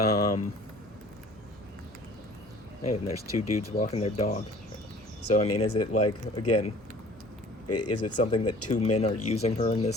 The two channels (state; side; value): normal; both; correlation 0.50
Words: and there's two dudes walking their dog. So, I mean, is it, like, again, is it something that two men are using her in